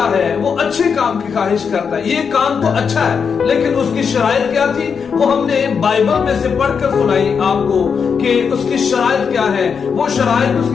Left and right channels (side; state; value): right; quieter; 6.3 dB